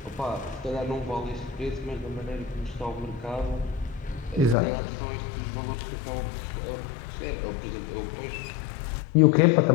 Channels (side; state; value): right; drops out; at 4.5 s